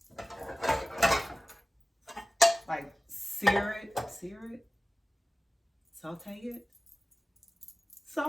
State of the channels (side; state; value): both; normal; correlation 0.97